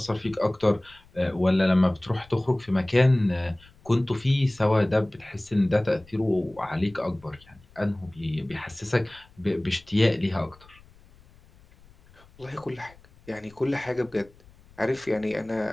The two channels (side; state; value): left; noise; rumble, 27 dB below the sound